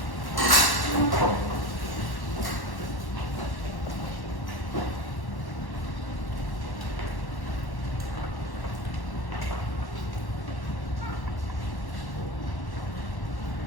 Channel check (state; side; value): late; right; 1.1 ms